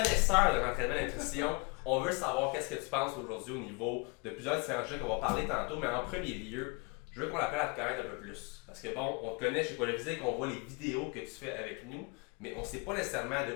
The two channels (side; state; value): right; quieter; 30.1 dB